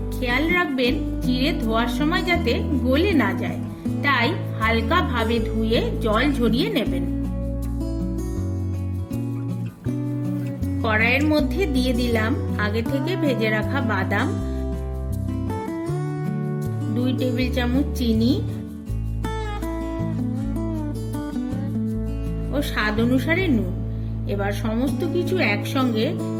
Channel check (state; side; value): identical; both; correlation 1.00